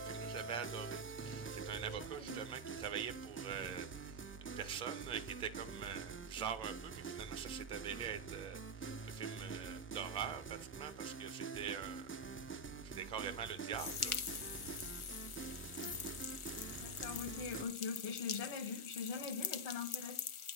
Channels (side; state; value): right; late; 1.4 ms